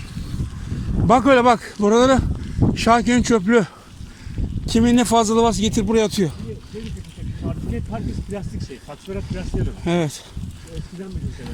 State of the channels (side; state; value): both; identical; correlation 1.00